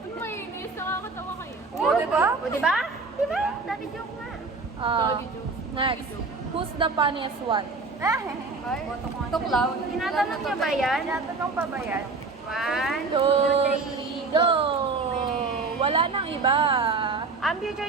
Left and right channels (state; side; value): quieter; left; 4.1 dB